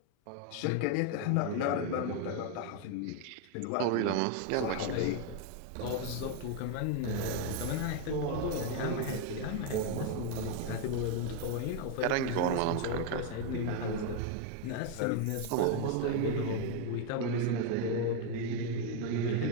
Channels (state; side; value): different; both; correlation 0.01